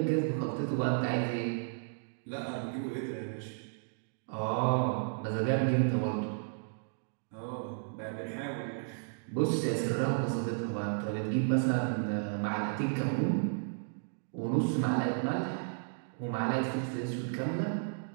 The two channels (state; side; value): silent; left; digital silence